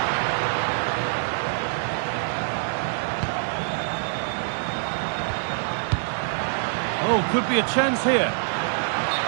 Oh, could be a chance here.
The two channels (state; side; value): silent; left; digital silence